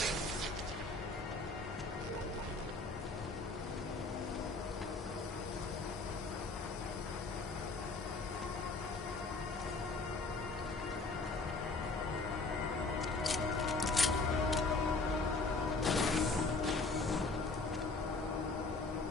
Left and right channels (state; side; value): quieter; right; 3.5 dB